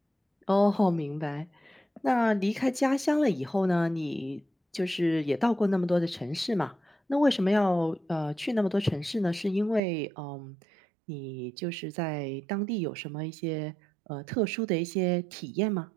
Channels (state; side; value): drops out; left; at 9.8 s